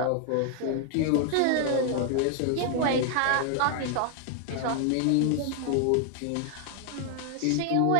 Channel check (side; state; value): both; different; correlation 0.00